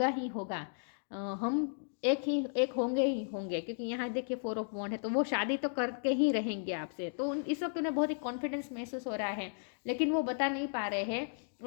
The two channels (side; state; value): right; silent; digital silence